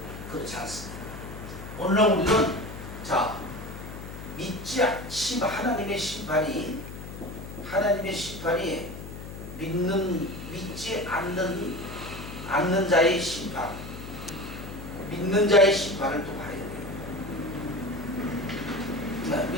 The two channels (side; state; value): left; noise; hum, 11 dB below the sound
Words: 그렇지 않습니다. 오늘날 우리는 자 믿지 하나님의 심판이 믿지 않는 자의 심판, 믿는 자의 심판을 또 봐야 돼요. 네,